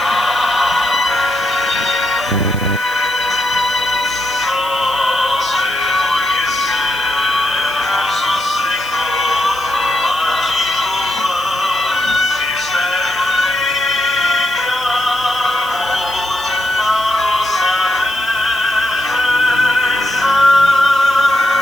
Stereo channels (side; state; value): right; noise; hiss, 17 dB below the sound